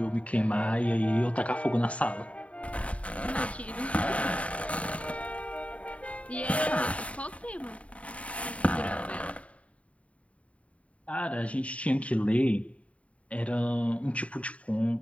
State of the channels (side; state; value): right; late; 0.065 ms